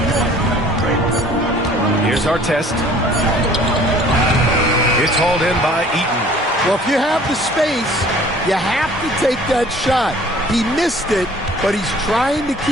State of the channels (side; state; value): both; normal; correlation 0.52